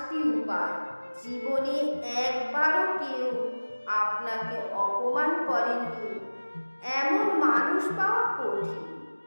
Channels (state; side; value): inverted; both; correlation -1.00